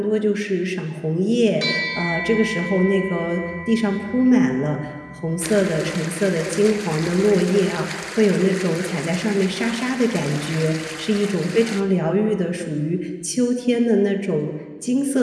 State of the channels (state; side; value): identical; both; correlation 1.00